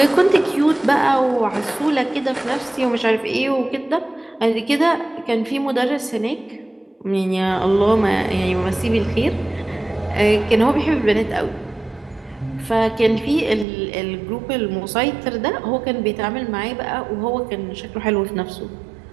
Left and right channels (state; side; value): drops out; left; at 13.7 s